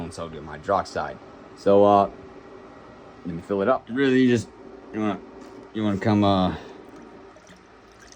sodium hydroxide. So let me fill it up. Really, you wanna come all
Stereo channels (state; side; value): identical; both; correlation 1.00